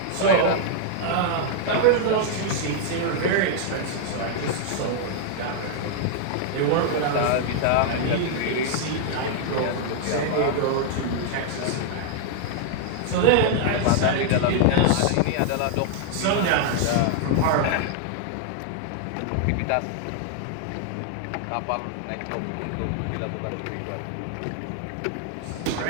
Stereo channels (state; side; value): different; both; correlation -0.01